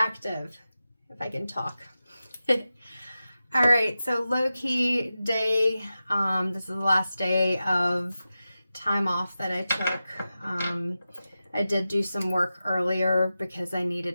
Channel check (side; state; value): both; inverted; correlation -0.93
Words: if I can talk. All right, so low-key day. This is the last day of time off that I took. I did do some work earlier because I